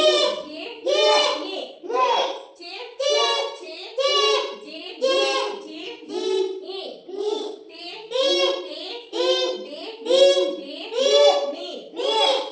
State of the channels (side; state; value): both; identical; correlation 1.00